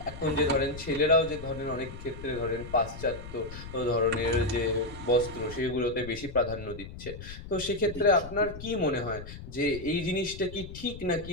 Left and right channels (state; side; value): noise; left; rumble, 12 dB below the sound